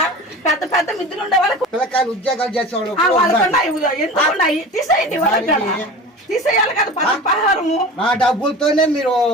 పెద్ద పెద్ద మిద్దులు ఉండే వాళ్ళకి పిల్లకాయలు ఉద్యోగాలు చేసేవాళ్ళు ఎందుకున్నాయి? తీసేయండి వాళ్ళకి, తీసేయాలి కదా పదహారము. నా డబ్బులతోనే మీరు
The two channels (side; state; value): both; normal; correlation 0.35